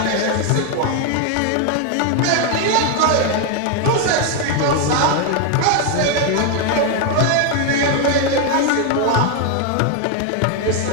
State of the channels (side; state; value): both; different; correlation 0.01